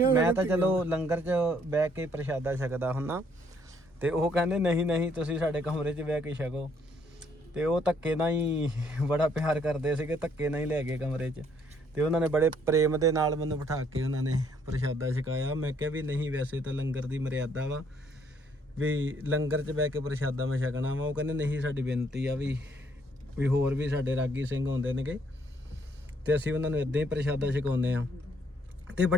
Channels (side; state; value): both; normal; correlation 0.67